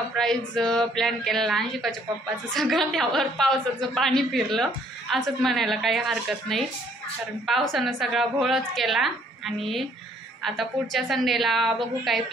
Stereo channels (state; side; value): normal; both; correlation 0.63